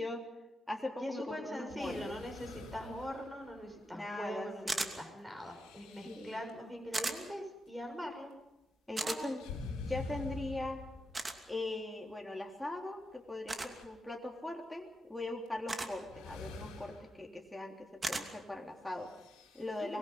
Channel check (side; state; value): both; normal; correlation 0.86